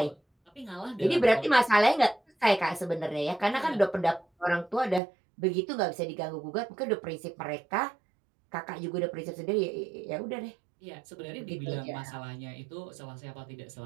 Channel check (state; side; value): drops out; left; at 5.0 s